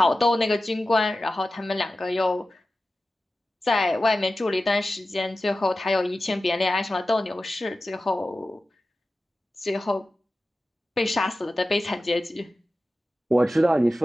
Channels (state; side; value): normal; both; correlation 0.94